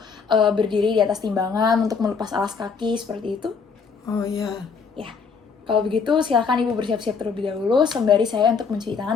berdiri di atas timbangan untuk melepas alas kaki seperti itu. Oh iya. Ya, kalau begitu silakan Ibu bersiap-siap terlebih dahulu sembari saya untuk mencuci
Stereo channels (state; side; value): quieter; right; 5.5 dB